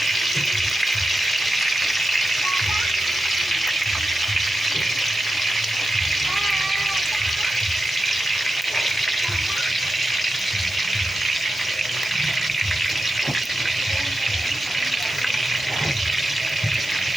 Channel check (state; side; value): normal; both; correlation 0.90